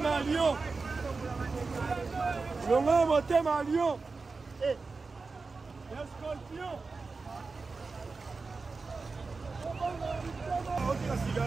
Lion. Longa motema Lion. Eh. Un scorpion. Ok, la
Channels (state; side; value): quieter; left; 4.2 dB